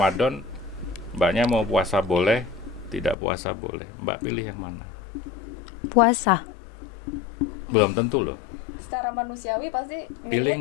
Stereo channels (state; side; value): drops out; right; at 3.2 s